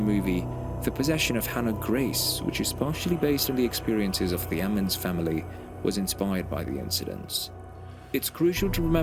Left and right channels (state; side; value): identical; both; correlation 1.00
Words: The Possession of Hannah Grace, which is partially based on the experiences of the Ammons family, was inspired by the incidents. It's crucial to